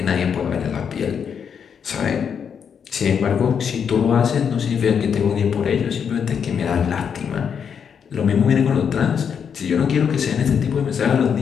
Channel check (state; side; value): quieter; right; 7.2 dB